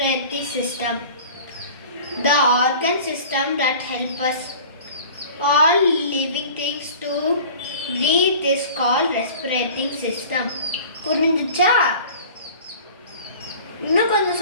system? The organ system that help us all living things to breathe is called respiratory system. புரிஞ்சுச்சா? இன்னும் கொஞ்சம்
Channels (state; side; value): inverted; both; correlation -0.43